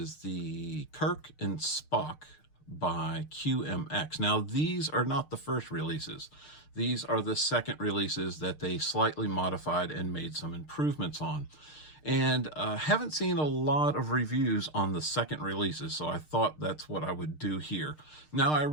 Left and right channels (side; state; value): right; late; 6.6 ms